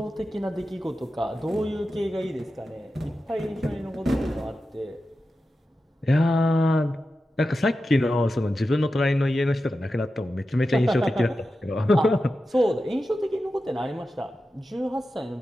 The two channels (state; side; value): normal; both; correlation 0.92